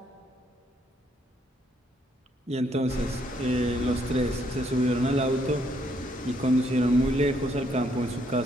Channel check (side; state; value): both; normal; correlation 0.71